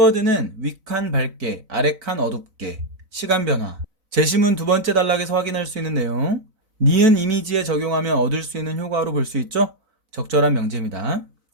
윗칸 밝게, 아래칸 어둡게, 시간 변화. 제시문 두 번째 단락에서 확인할 수 있는 내용. 니은 이미지에 적용하면 얻을 수 있는 효과로 볼 수 있죠? 적절한 명제입니다.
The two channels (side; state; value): left; late; 4.0 ms